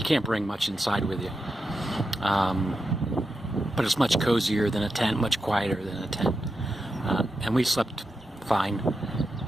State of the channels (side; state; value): both; normal; correlation 0.88